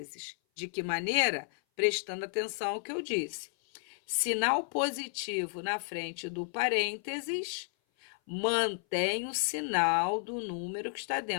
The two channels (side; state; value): right; silent; 56 dB below the other